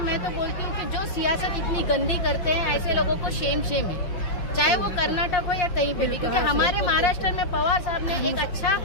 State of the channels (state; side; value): late; right; 5.7 ms